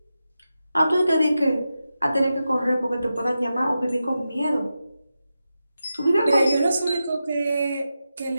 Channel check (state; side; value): inverted; both; correlation -0.90